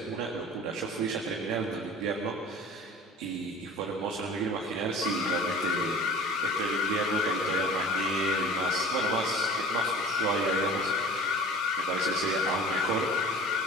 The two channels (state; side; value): normal; both; correlation 0.42